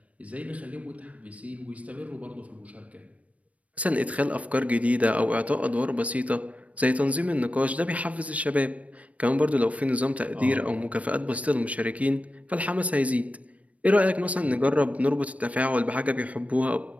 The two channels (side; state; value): left; late; 0.066 ms